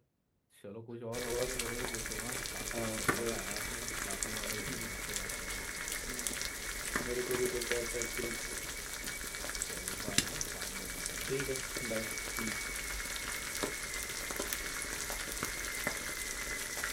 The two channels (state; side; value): identical; both; correlation 1.00